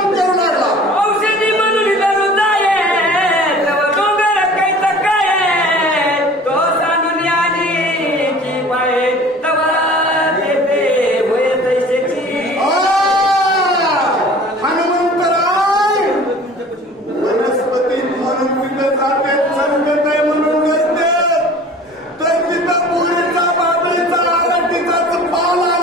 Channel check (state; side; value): normal; both; correlation 0.45